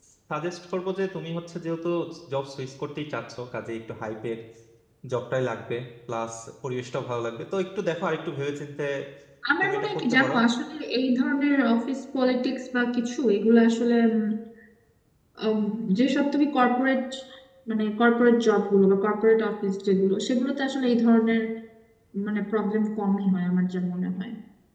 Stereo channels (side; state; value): both; identical; correlation 1.00